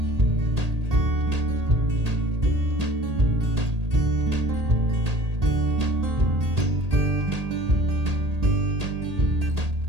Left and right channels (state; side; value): late; left; 1.8 ms